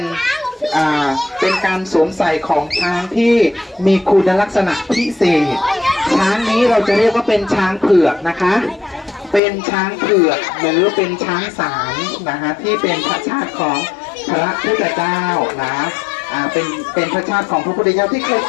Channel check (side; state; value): right; drops out; at 9.4 s